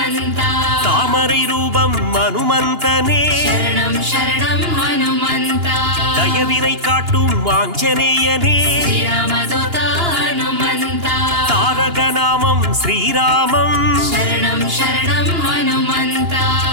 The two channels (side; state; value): left; late; 2.9 ms